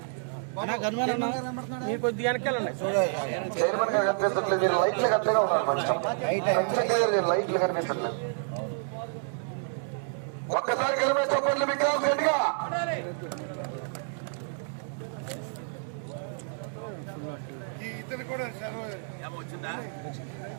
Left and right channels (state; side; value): silent; left; digital silence